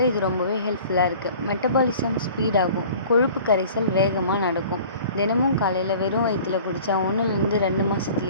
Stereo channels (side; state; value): both; inverted; correlation -0.46